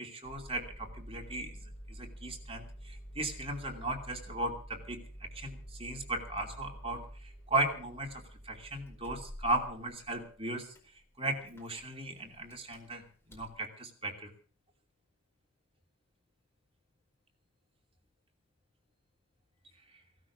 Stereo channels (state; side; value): normal; both; correlation -0.09